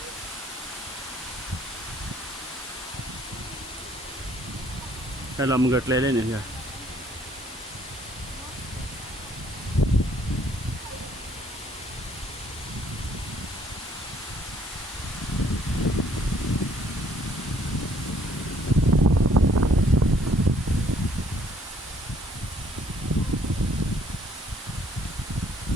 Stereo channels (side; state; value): both; normal; correlation 0.63